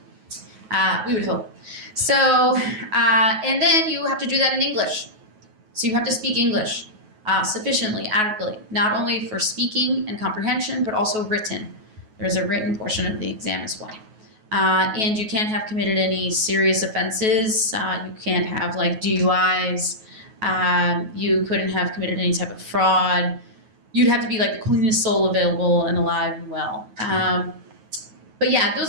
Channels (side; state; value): left; late; 9.3 ms